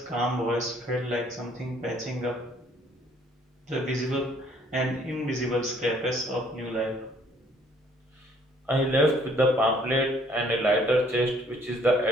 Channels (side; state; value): both; normal; correlation 0.62